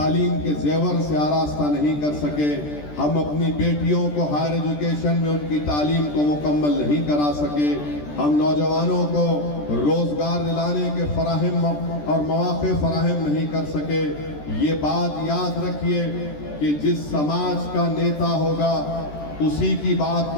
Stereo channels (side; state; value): right; late; 14 ms